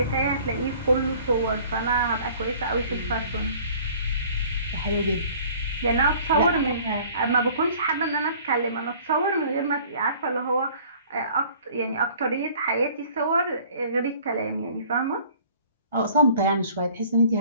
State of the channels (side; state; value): both; inverted; correlation -0.51